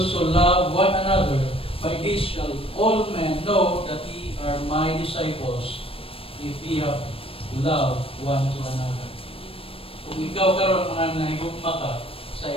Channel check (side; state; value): right; late; 0.27 ms